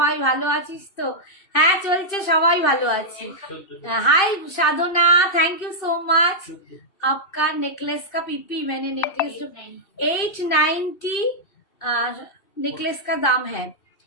ভালো আছিস তো? হ্যাঁ চলছে, সবাই ভালো আছি। हाय साधना, थैंक यू सो मच। आपका नेकलेस का पीपी, मैंने नेकलेस 890 नेकलेस का दाम है।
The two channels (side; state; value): right; late; 2.6 ms